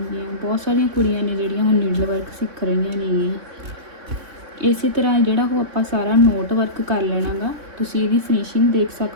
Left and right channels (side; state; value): left; late; 3.6 ms